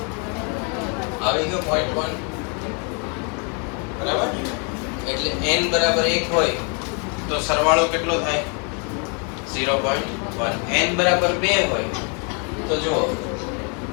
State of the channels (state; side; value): quieter; right; 37.1 dB